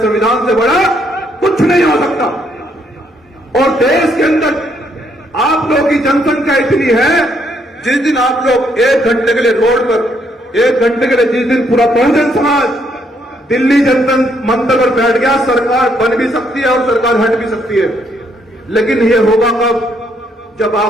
संविधान से बड़ा कुछ नहीं हो सकता। और देश के अंदर आप लोगों की जनसंख्या इतनी है, जिस दिन आप लोग 1 घंटे के लिए रोड पर, 1 घंटे के लिए जिस दिन पूरा बहुजन समाज दिल्ली जनता मंदिर पर बैठ गया, सरकार बन भी सकती है और सरकार हट भी सकती है। लेकिन ये होगा कब? जब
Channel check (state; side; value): normal; both; correlation 0.72